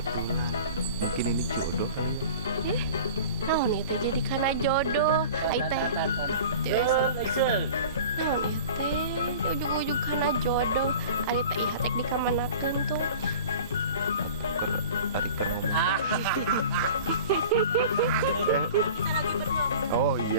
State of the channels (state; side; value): inverted; both; correlation -0.40